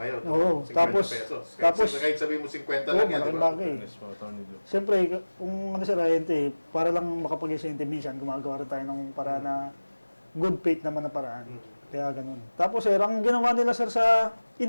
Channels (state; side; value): inverted; both; correlation -1.00